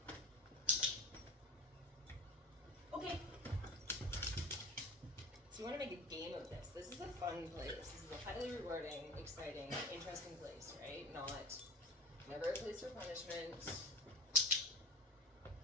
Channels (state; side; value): normal; both; correlation 0.35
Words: Okay. So you want to make a game of this. This is a fun place. This is a highly rewarding, exciting, interesting place, right? Never a place for punishment.